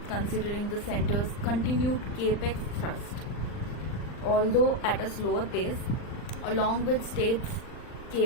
considering the centre's continued capex thrust, although at a slower pace, along with states'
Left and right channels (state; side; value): late; right; 39 ms